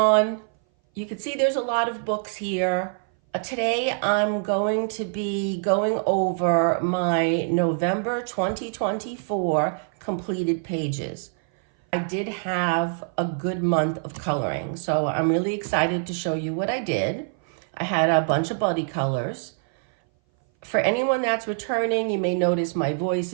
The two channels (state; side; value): silent; left; 59 dB below the other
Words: you can see there's a lot of books here. Today I'm going to be going over my November 2024 completed pages. I did have a good month of coloring, so I'm really excited to show you what I did. I had a bunch of buddy colors. For anyone that's returning, you may notice my voice